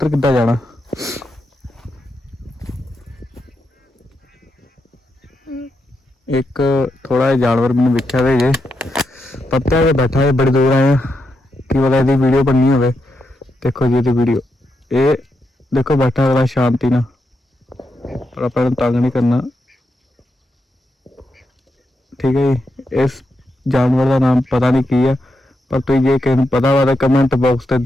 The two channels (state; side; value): normal; both; correlation 0.84